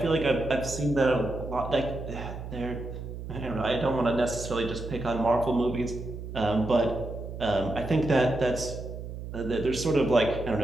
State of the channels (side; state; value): right; noise; hum, 9 dB below the sound